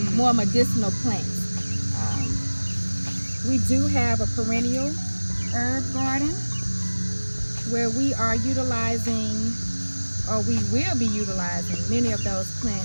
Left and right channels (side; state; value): both; inverted; correlation -1.00